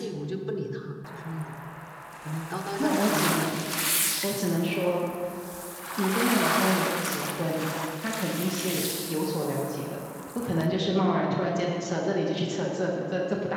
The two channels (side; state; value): both; identical; correlation 1.00